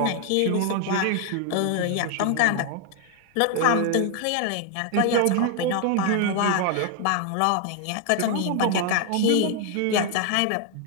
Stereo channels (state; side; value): different; both; correlation 0.00